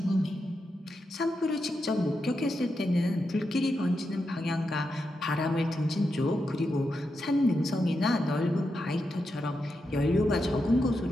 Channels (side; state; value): both; normal; correlation 0.86